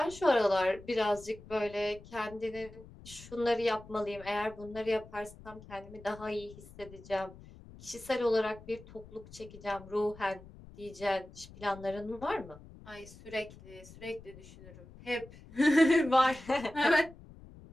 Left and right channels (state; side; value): noise; left; rumble, 19 dB below the sound